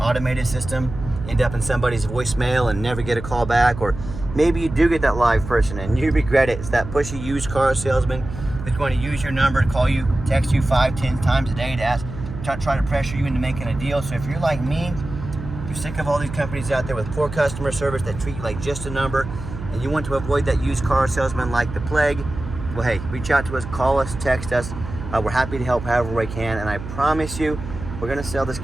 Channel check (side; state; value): right; noise; hum, 10 dB below the sound